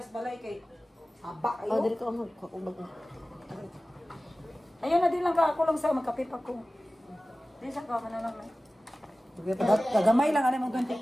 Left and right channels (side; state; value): both; normal; correlation 0.96